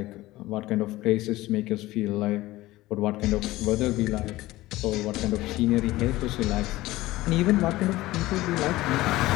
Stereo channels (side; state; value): right; quieter; 17.8 dB